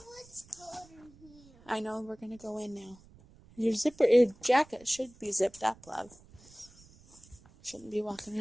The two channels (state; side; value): noise; right; rumble, 25 dB below the sound